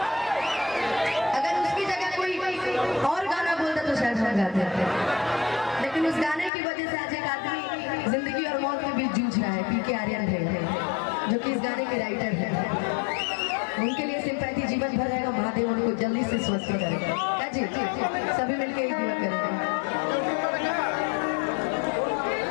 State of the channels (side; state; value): right; drops out; at 6.5 s